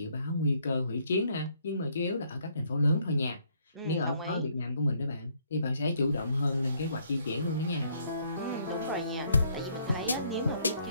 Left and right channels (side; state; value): both; inverted; correlation -0.68